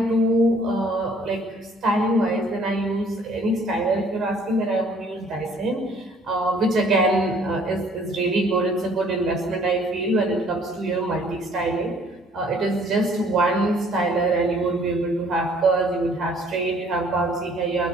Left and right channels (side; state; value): both; normal; correlation 0.58